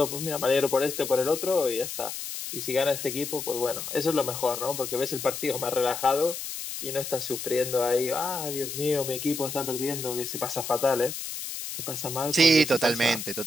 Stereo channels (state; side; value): noise; left; hiss, 7 dB below the sound